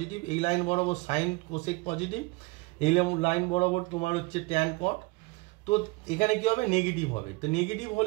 এই লাইন বরাবর সাইন কোসেক পজিটিভ, এই লাইন বরাবর তোমার হচ্ছে ট্যান কট। তো এখানে কি হবে নেগেটিভ হবে, তো নেগেটিভ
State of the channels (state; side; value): quieter; left; 25.2 dB